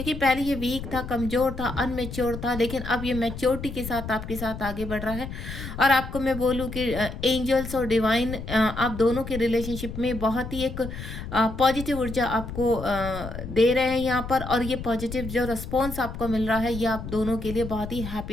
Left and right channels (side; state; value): left; noise; rumble, 9 dB below the sound